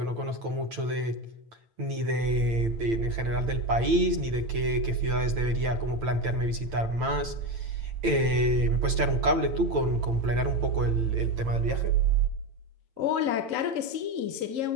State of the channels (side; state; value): left; late; 8.9 ms